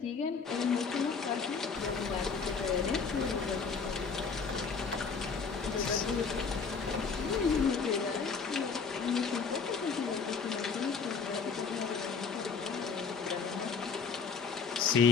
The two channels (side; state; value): right; quieter; 5.4 dB